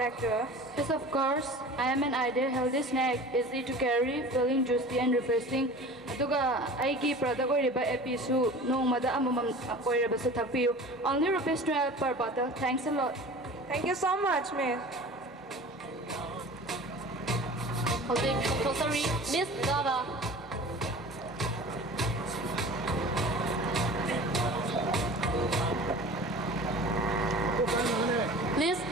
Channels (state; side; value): normal; both; correlation 0.40